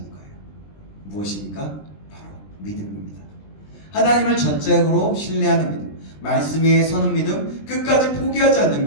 거예요. 무엇입니까? 바로 믿음입니다. 하나님을 전적으로 신뢰하는 믿음, 말씀 위에 서는 믿음, 끝까지 포기하지 않는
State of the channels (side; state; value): right; late; 20 ms